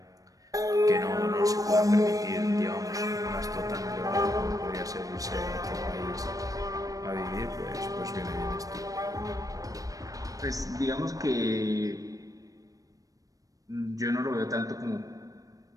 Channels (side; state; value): left; late; 0.17 ms